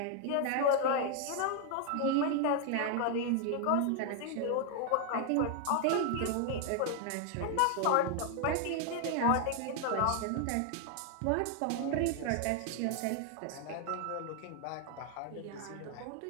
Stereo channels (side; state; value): both; different; correlation 0.00